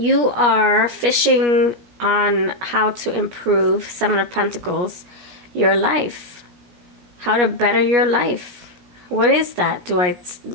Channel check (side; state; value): left; late; 17 ms